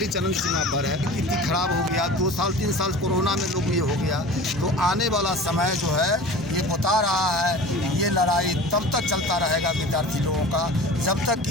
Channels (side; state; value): both; normal; correlation 0.38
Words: चरम सीमा पर है, स्थिति खराब हो गया। 2 साल 3 साल कोरोना में लोग ये हो गया। तो आने वाला समय जो है ये बता रहा है ये लड़ाई तब तक चलता रहेगा विद्यार्थी लोगों का जब तक कि